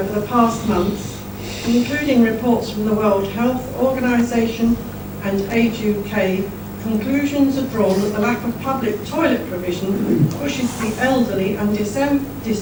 the past months, including reports from the World Health Organization and Age UK, conclusions are drawn that the lack of public toilet provision pushes the elderly and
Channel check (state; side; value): noise; right; rumble, 26 dB below the sound